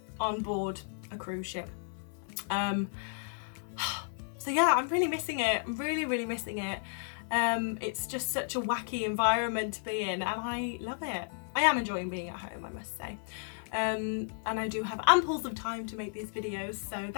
on board a cruise ship. So yeah, I'm really missing it. I'm really, really missing it. It's just such a wacky environment to be in, and I love it. I am enjoying being at home, I must say. And I do have amples of time to make these videos, so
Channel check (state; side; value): silent; right; 56 dB below the other